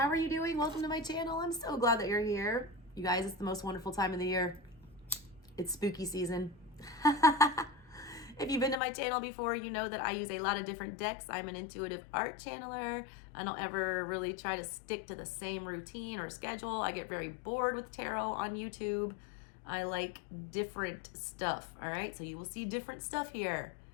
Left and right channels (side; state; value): right; drops out; at 8.8 s